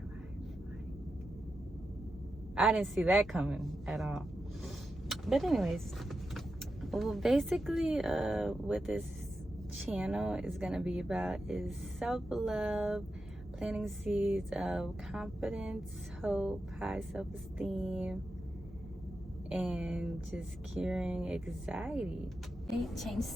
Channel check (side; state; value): both; normal; correlation 0.89